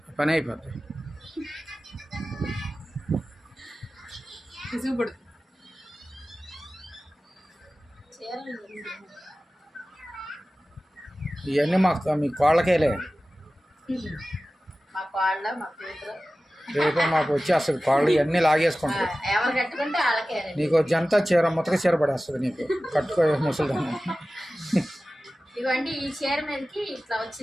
పని అయిపోతుంది. చూపడు చీరలు ఇవన్నీ మీ కోళ్ళకేలే, మా కోళ్ళ మా కూతురు రేపు మాకు వచ్చేస్తుంది కోళ్ళు, ఇవన్నీ లాగేసుకుంటారు. ఎవరు కట్టుకుంటే వాళ్ళకే. నీకు జంతా చీర ముతక చీర పడేస్తుంది నీకు, కట్టుకో ముసలిదాన్ని. ఇవ్వండి ఈ చీర మీదకి ఇట్లా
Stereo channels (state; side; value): normal; both; correlation 0.96